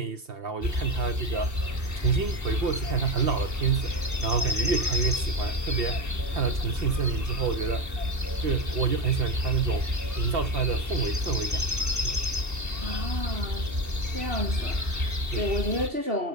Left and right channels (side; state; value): left; late; 2.7 ms